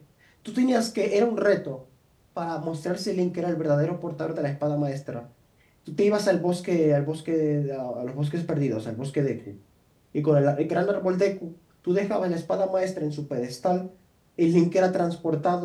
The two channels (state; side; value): identical; both; correlation 1.00